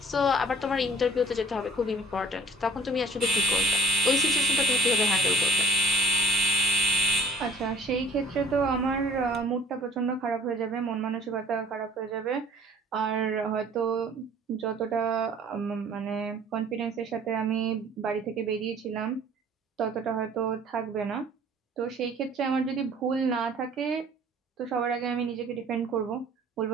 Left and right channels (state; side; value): normal; both; correlation 0.50